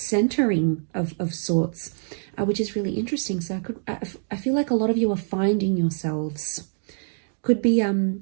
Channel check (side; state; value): left; silent; digital silence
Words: of sorts, which is really interesting. So I feel like a lot of you are finding yourselves. Could be